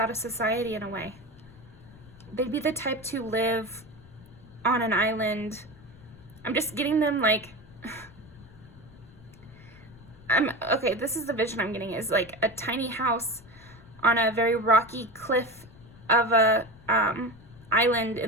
of society in a way. They'd be the type to live on an island. I'm just getting them like... Okay, this is the vision I'm getting, is like a tiny house on a very rocky cliff of a island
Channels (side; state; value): left; noise; rumble, 22 dB below the sound